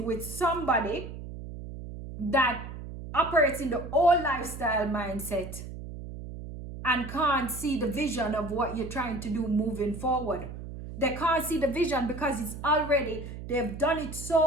with somebody that operates in the old lifestyle mindset and can't see the vision of what you're trying to do moving forward. They can't see the vision because it's already, they've done it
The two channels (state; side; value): noise; right; hum, 10 dB below the sound